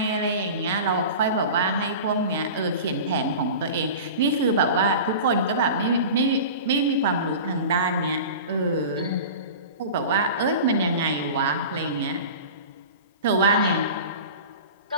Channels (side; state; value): both; inverted; correlation -0.35